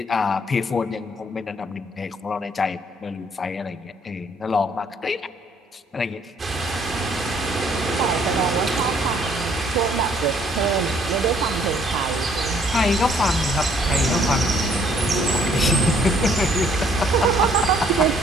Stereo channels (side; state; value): both; normal; correlation 0.63